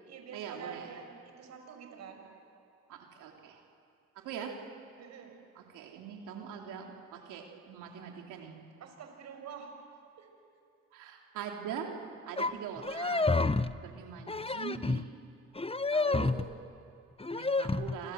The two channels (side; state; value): both; normal; correlation 0.49